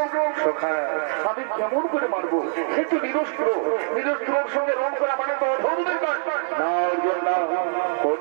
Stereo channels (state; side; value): silent; left; digital silence